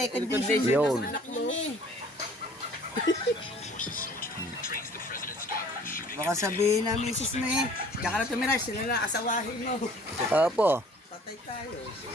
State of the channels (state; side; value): normal; both; correlation 0.52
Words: Yun. na anak mo. Baka sabihin na misis mo eh. Diyan ka na tumira, sila na asawahin mo. Apo. Patay tayo.